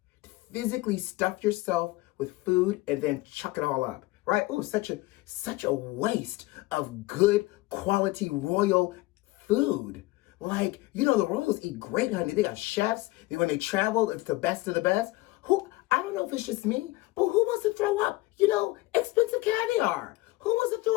physically stuff yourself with food and then chuck it all up, right? Ooh, such a waste of good quality royal food. Like, you know, the royals eat great, honey. They got chefs. When they travel, it's the best of the best. I don't know if it's just me, but who wants to throw up, you know, expensive caviar? Who wants to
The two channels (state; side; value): quieter; right; 20.2 dB